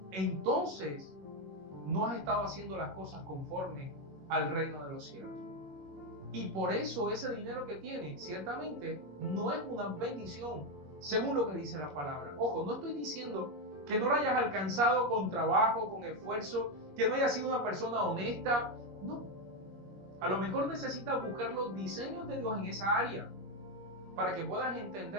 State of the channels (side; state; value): left; late; 21 ms